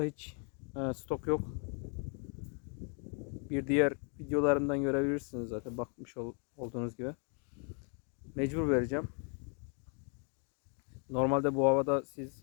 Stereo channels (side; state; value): right; quieter; 39.8 dB